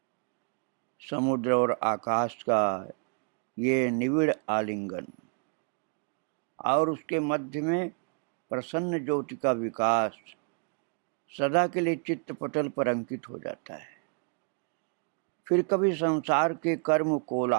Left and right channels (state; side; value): quieter; left; 39.2 dB